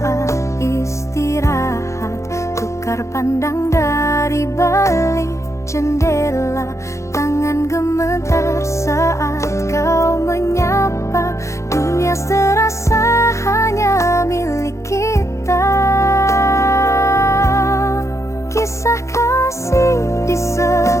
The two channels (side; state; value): right; late; 0.14 ms